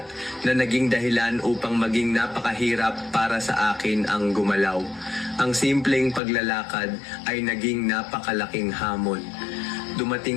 na naging dahilan upang maging napakahirap para sa akin ang gumalaw. Ang simpleng paglalakad ay naging napakalaking hamon.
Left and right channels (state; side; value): drops out; right; at 6.2 s